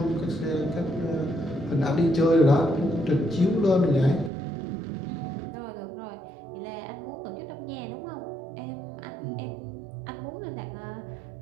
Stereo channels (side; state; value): left; drops out; at 4.3 s